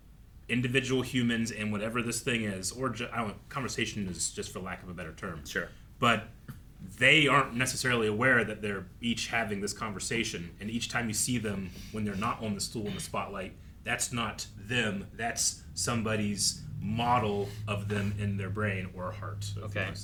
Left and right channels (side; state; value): both; identical; correlation 1.00